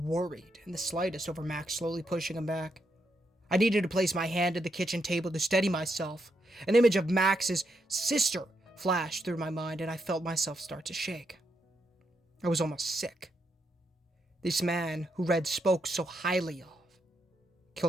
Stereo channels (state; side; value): normal; both; correlation 0.80